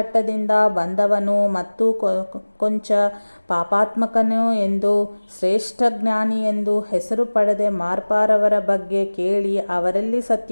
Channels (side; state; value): both; inverted; correlation -1.00